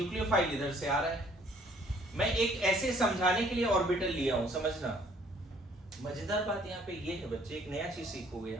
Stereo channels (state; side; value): normal; both; correlation 0.60